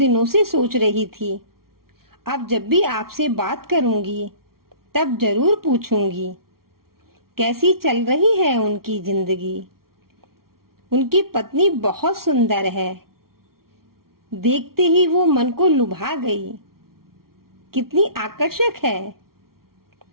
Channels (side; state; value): left; late; 0.93 ms